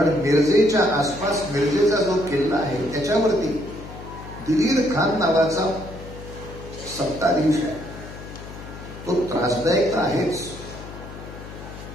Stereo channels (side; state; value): left; noise; hum, 13 dB below the sound